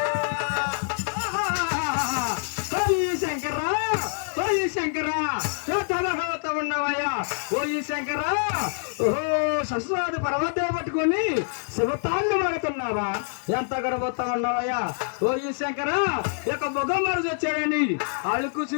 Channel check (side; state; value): right; silent; digital silence